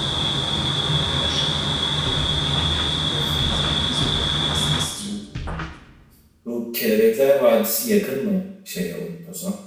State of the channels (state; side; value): identical; both; correlation 1.00